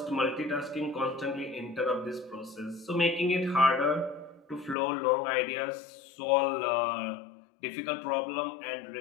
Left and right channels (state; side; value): drops out; right; at 4.8 s